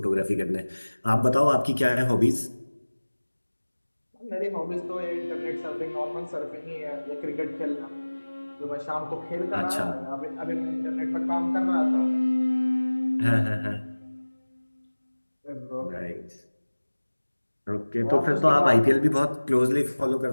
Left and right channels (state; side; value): inverted; both; correlation -1.00